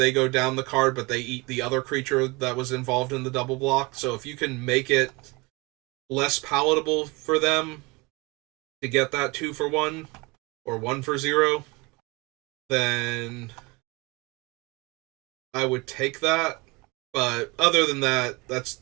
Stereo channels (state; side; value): quieter; left; 25.7 dB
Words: go down the card, but they eat the other creature that was involved in the double block. So if you can make it less palatable for them to get that 2-for-1 or 1-for-0, then I would take that. But other than that, that's